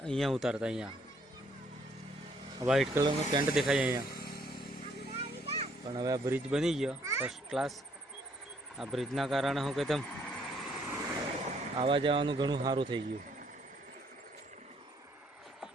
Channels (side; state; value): both; normal; correlation 0.67